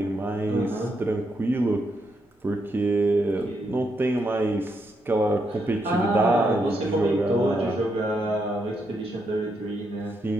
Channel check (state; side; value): normal; both; correlation 0.79